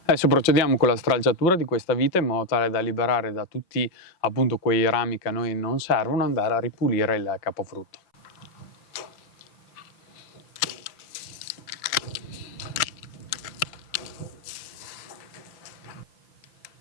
Adesso procediamo con la stralciatura di questa vite in modo tale da liberare da tutti appunto quei rami che a noi non servono, andare a ripulire il capofrutto.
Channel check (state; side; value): late; right; 5.7 ms